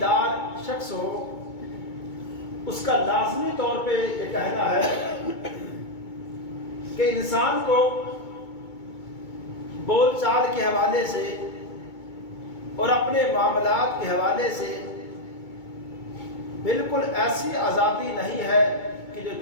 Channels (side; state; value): right; late; 2.2 ms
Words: شخص ہو، اس کا لازمی طور پہ یہ کہنا ہے کہ انسان کو بول چال کے حوالے سے اور اپنے معاملات کے حوالے سے بالکل ایسی آزادی نہیں ہے کہ جو